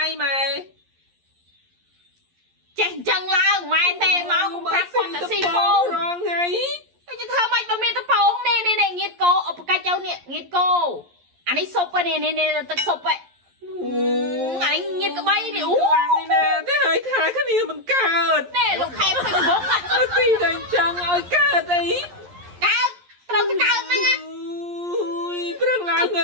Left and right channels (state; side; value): late; left; 11 ms